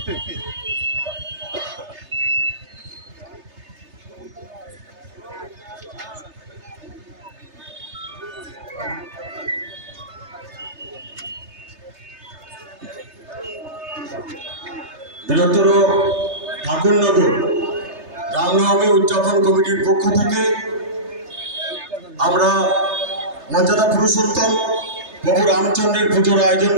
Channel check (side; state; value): left; late; 3.3 ms